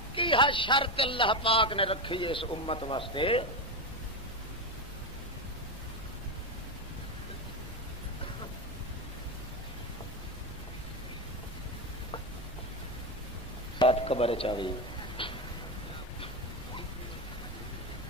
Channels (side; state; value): both; normal; correlation 0.13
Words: کی ہے شرط اللہ پاک نے رکھی ہے اس امت واسطے ساتھ قبر چاہیے